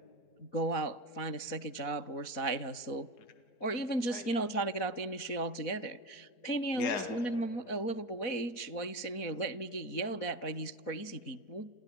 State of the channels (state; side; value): late; right; 4.1 ms